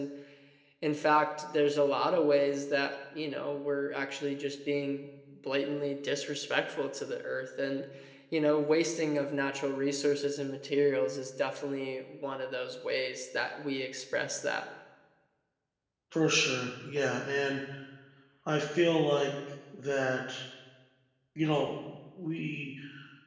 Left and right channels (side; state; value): both; identical; correlation 1.00